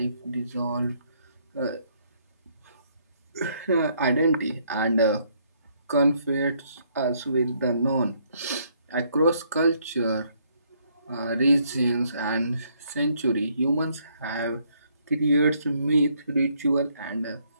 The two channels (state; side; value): inverted; both; correlation -0.70